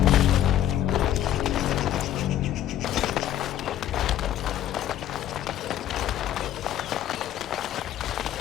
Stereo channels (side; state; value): right; quieter; 11.7 dB